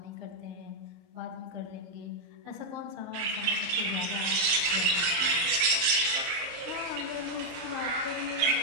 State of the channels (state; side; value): late; left; 23 ms